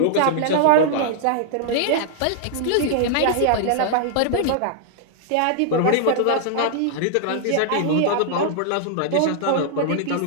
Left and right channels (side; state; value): both; different; correlation -0.01